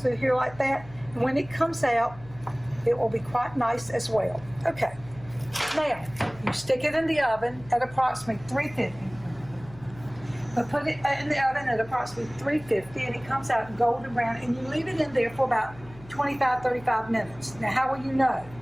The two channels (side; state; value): left; noise; hum, 19 dB below the sound